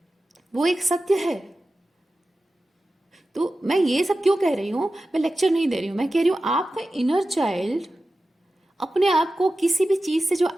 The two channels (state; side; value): normal; both; correlation 0.94